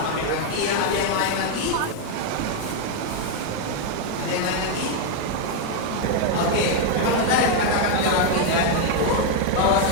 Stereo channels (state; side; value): different; both; correlation 0.01